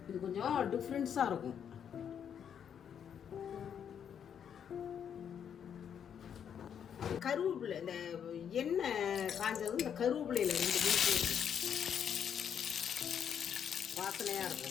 இது கொஞ்சம் டிஃப்ரென்ஸாக இருக்கும். கருவேப்பிலை, இந்த எண்ணெய் காஞ்சதும் இந்த கருவேப்பிலையில் 2 பீஸ் வாசனையாக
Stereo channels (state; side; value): quieter; right; 8.3 dB